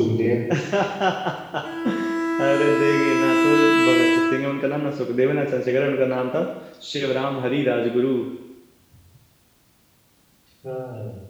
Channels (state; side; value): identical; both; correlation 1.00